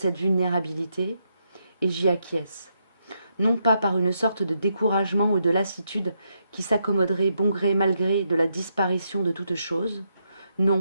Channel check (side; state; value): both; inverted; correlation -0.80